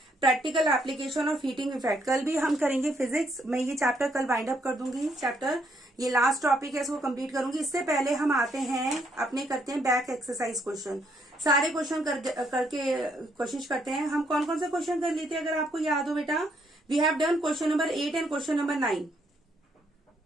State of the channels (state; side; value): normal; both; correlation 0.72